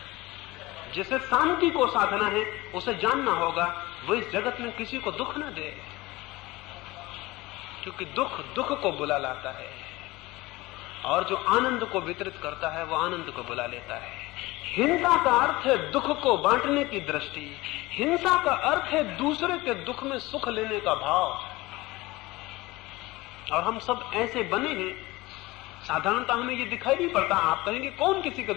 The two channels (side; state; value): right; quieter; 20.4 dB